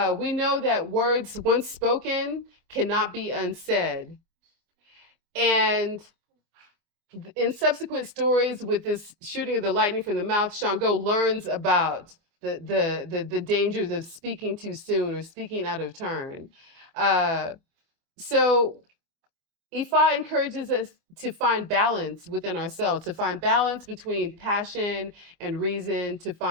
know that words once spoken cannot be unsaid. And in subsequent stories with this shooting of the lightning from the mouth, Shango learns about the dangers of speaking too soon or speaking out of turn. So Ifa encourages us to find balance within ourselves, to find balance between passion and reason, to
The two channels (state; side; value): late; left; 24 ms